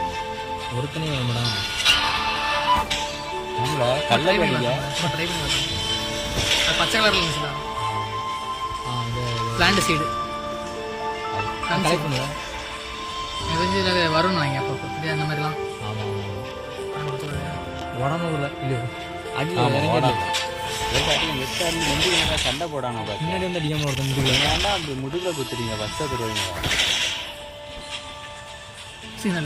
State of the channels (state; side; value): identical; both; correlation 1.00